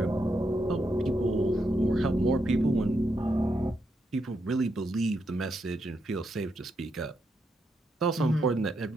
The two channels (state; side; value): normal; both; correlation 0.81